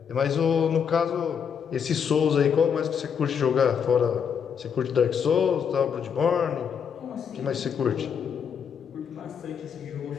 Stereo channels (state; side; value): quieter; right; 7.3 dB